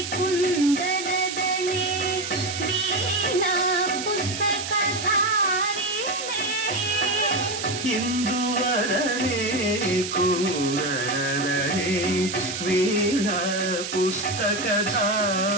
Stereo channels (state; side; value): noise; right; hiss, 6 dB below the sound